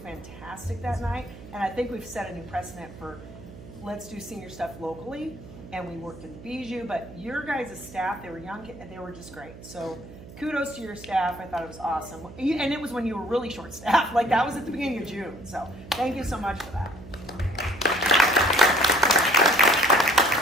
that night. And I think we've set a new precedent for let's do senior stuff locally. And we worked at Bijou, but your guys' staff, they were young, and they were just great. So kudos to your staff. I thought it was awesome. And it was when you were really short staffed. Like that was at the beginning of June. So thank you so much for that.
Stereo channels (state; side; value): noise; right; hum, 16 dB below the sound